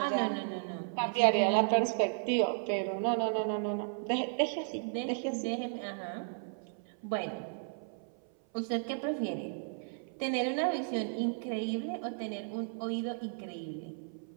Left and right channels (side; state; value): left; silent; 55 dB below the other